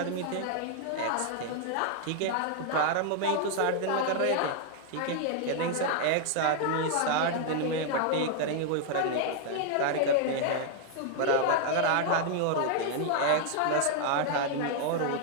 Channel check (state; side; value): different; both; correlation 0.00